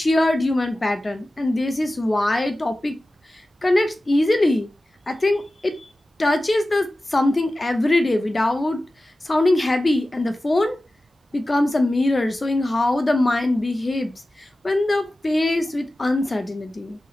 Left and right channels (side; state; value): both; normal; correlation 0.95